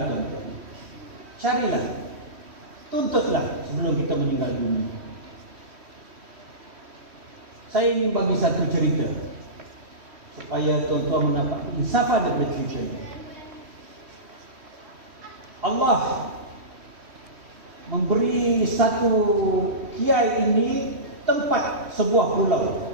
tuan-tuan. Carilah, tuntutlah sebelum kita meninggal dunia. Saya ingin bagi satu cerita supaya tuan-tuan mendapat insafan daripada cerita ini. Allah memberi satu kiai ini tempat sebuah pulau,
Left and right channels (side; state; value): left; late; 3.1 ms